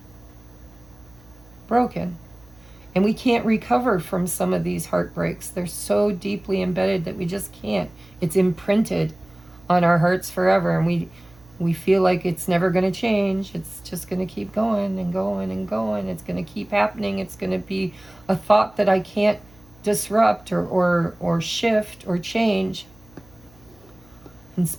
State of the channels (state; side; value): noise; right; hum, 27 dB below the sound